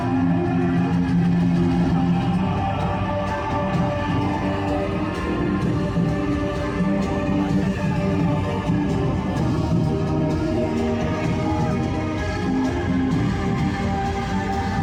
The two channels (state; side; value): identical; both; correlation 1.00